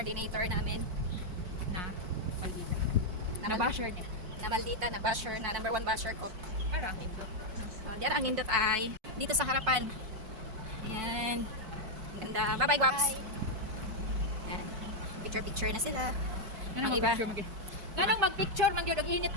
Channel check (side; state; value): left; late; 4.6 ms